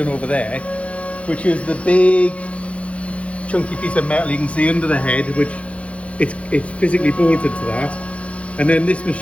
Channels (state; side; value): late; right; 0.063 ms